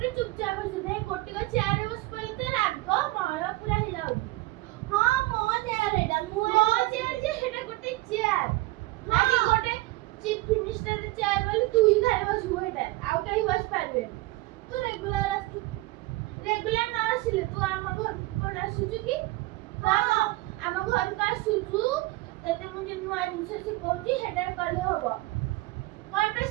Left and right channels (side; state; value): left; quieter; 20.0 dB